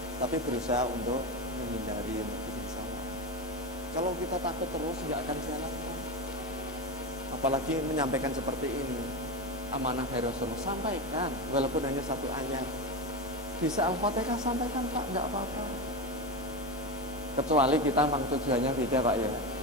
tapi berusaha untuk menghindari untuk bikin salah. Kalau kita takut terus nggak akan jalan Pak. Apalagi menyampaikan seperti ini, amanah dari Rasulullah, sampaikan walaupun hanya 1 ayat. Bisa Al-Fatihah sampaikan Pak, nggak apa-apa. Kecuali kita memang tujuannya beda Pak ya,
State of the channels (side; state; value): both; normal; correlation 0.17